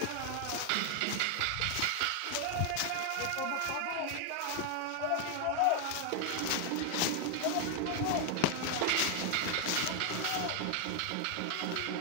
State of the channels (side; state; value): both; different; correlation 0.00